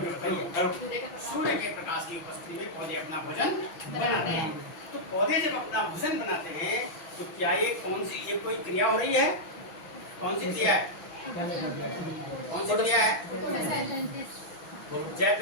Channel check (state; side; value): late; right; 6.1 ms